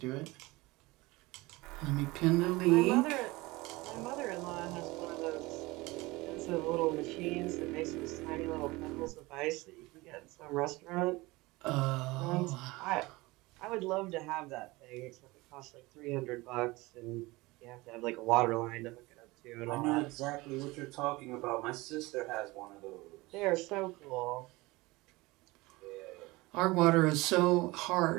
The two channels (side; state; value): left; quieter; 21.8 dB